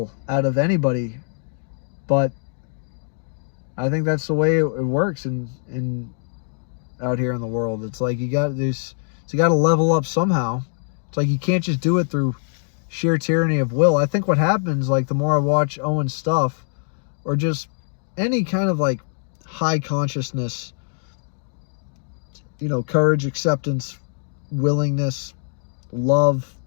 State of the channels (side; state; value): right; silent; digital silence